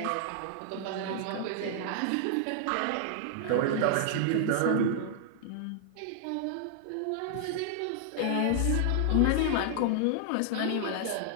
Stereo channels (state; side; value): different; both; correlation -0.01